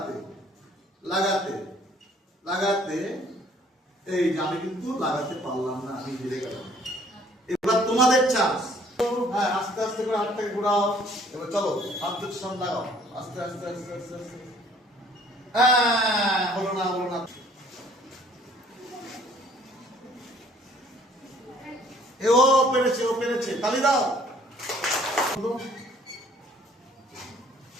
লাগাতে লাগাতে। এই যে আমি কিন্তু লাগাতে পারলাম না, আমি হেরে গেলাম। এবার তোমাদের চান্স। হ্যাঁ, আস্তে আস্তে করে হাতটাকে ঘোরাও। এবার চলো, হাত দুটো সামনে লাগাও, আস্তে আস্তে আস্তে আস্তে আস্তে। হ্যাঁ, হলো না। ও পেরেছে, তালি দাও।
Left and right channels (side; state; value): both; normal; correlation 0.58